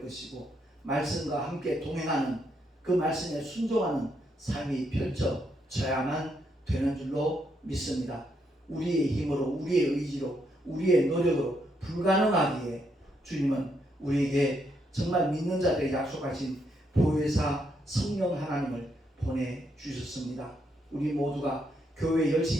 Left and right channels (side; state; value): both; normal; correlation 0.77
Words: 것이고 말씀과 함께 동행하는 그 말씀에 순종하는 삶이 펼쳐져야만 되는 줄로 믿습니다. 우리의 힘으로, 우리의 의지로, 우리의 노력으로 불가능하기에 주님은 우리에게 정말 믿는 자들에게 약속하신 보혜사 성령 하나님을 보내주셨습니다. 우리 모두가 교회